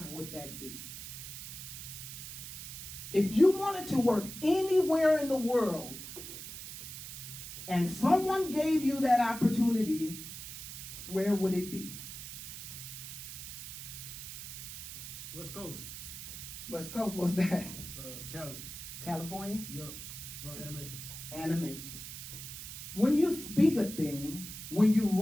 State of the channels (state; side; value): noise; right; hiss, 10 dB below the sound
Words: would that be? If you wanted to work anywhere in the world and someone gave you that opportunity, where would it be? West Coast. West Coast, what's that? Cali. California? Yup. For animation. Animation. When you speak a thing, when you